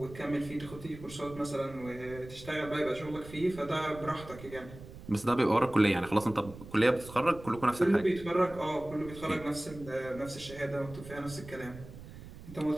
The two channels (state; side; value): noise; right; rumble, 16 dB below the sound